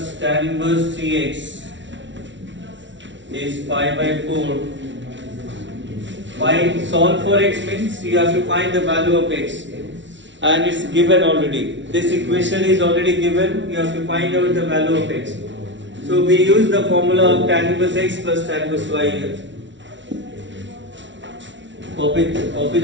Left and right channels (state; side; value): late; left; 0.54 ms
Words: tan inverse 3x is pi by 4. Solve for x means you have to find the value of x, and it's given already. This equation is already given. You have to find out the value of x. So we use the formula of tan inverse x plus tan inverse y here. Copy